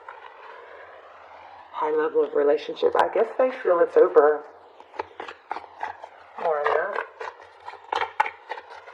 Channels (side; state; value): both; identical; correlation 1.00